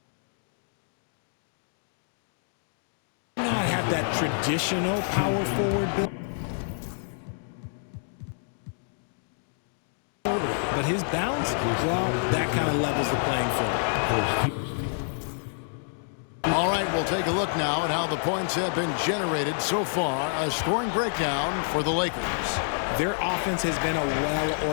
not have that traditional power forward build, but his bounce, well, that kind of levels the playing field. All right, we'll take a look now at how the points have been generated so far. A scoring breakdown for the Lakers. Their offense has been a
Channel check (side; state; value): right; silent; digital silence